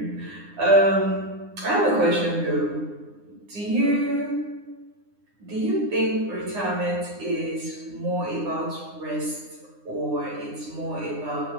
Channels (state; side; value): late; left; 9.8 ms